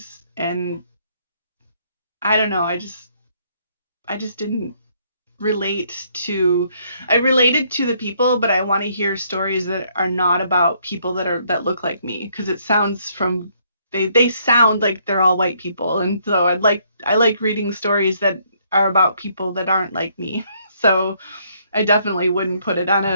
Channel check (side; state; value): both; inverted; correlation -0.69